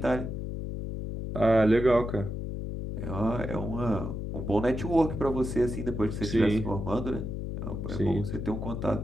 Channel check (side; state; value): left; noise; hum, 5 dB below the sound